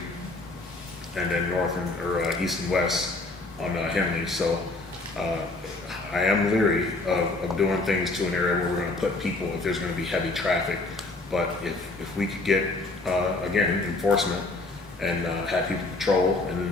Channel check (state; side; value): quieter; right; 3.2 dB